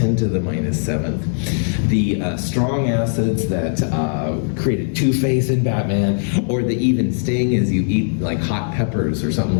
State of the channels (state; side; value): silent; right; digital silence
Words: to the minus 7th. The strong acids that created Two-Face in Batman, or the even sting as you eat like hot peppers or something